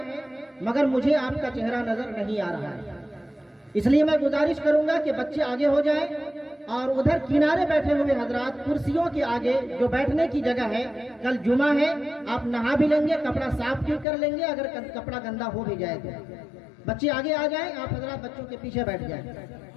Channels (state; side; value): drops out; right; at 14.1 s